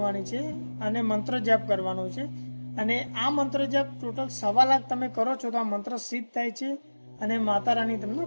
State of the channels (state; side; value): inverted; both; correlation -1.00